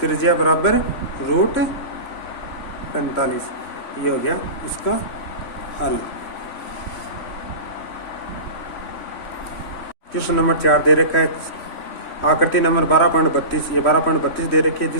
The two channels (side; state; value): right; late; 3.5 ms